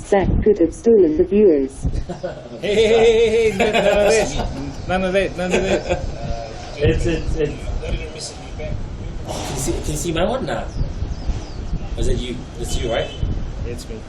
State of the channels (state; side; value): identical; both; correlation 1.00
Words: Zach could have stolen the viewers. Hey, none of that. It's. Can you see my one now? Was it you? It's you, right? It's me.